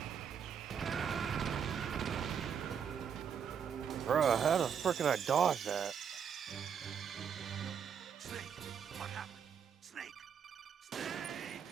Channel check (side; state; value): left; quieter; 7.5 dB